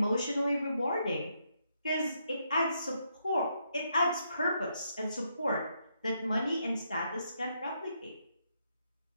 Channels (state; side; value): inverted; both; correlation -0.77